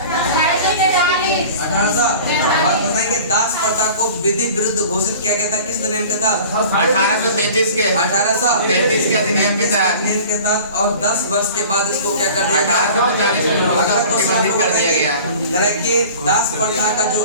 1800। और बताएंगे दास प्रथा को विधि विरुद्ध घोषित किया गया था किस अधिनियम के तहत? 1833 के 1833 के अधिनियम के तहत। और 10 वर्ष के बाद इसको क्या कर दिया गया? 1843 अगला क्वेश्चन कर दिया गया कि दास प्रथा का जो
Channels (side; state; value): both; inverted; correlation -0.42